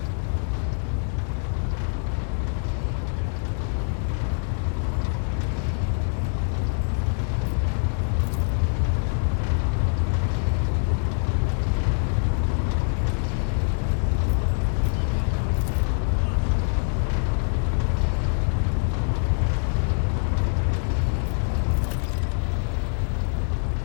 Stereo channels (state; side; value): silent; right; digital silence